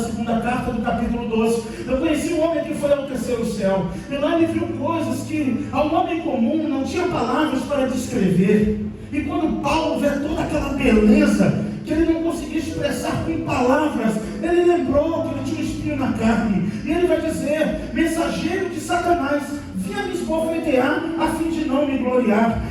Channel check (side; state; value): both; identical; correlation 1.00